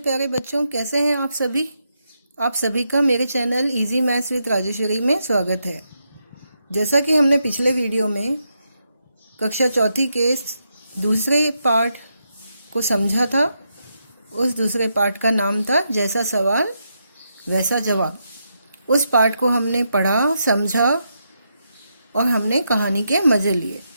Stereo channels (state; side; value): inverted; both; correlation -0.83